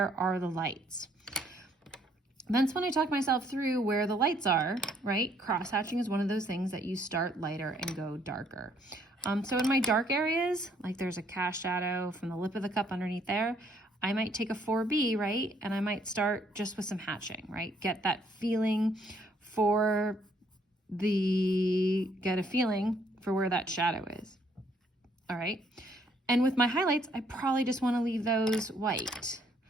are the lights. Then when I talk myself through where the lights are, right? Cross-hatching is one of those things that you start lighter and go darker. So in my dark areas, like there's a cast shadow from the lip of the cup underneath there, I might take a 4B, right? And I might start just with some hatching, right? Get a feeling for where that shadow is. All right. And with my highlights, I probably just want to leave those white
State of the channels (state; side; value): normal; both; correlation 0.67